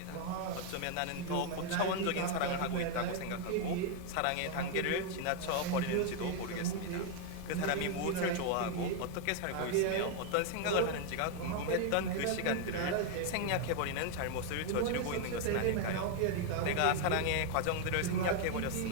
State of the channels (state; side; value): different; both; correlation 0.01